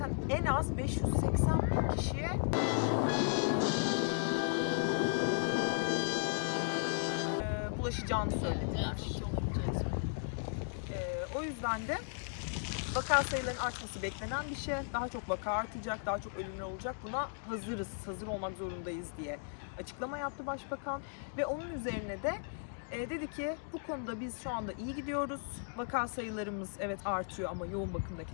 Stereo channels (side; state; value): right; silent; digital silence